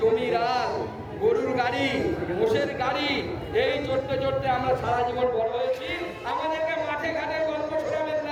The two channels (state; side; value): identical; both; correlation 1.00